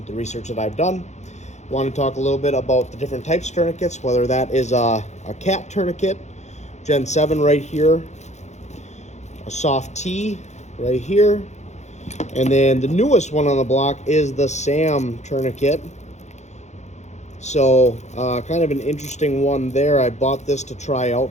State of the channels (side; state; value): right; late; 0.33 ms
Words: the research that I've done. I want to talk a little bit about the different types of tourniquets, whether that is a cat tourniquet, Gen 7 right here, a SOF-T right here, and then the newest one on the block is the SAM tourniquet. So kind of an interesting one there. I bought this to try